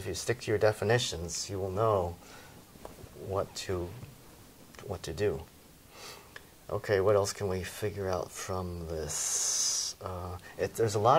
you stick to your definitions, you will know what to do. Okay, what else can we figure out from this? There's a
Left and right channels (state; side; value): identical; both; correlation 1.00